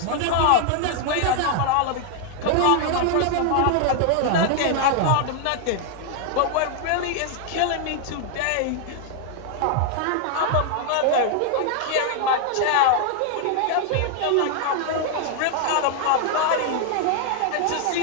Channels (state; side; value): different; both; correlation 0.00